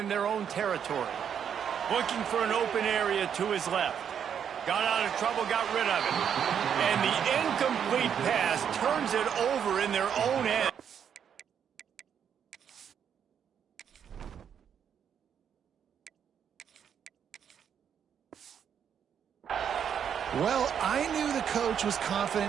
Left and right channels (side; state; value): left; quieter; 8.2 dB